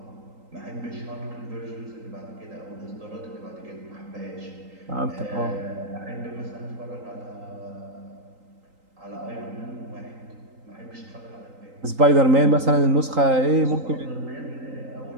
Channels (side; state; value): left; late; 3.8 ms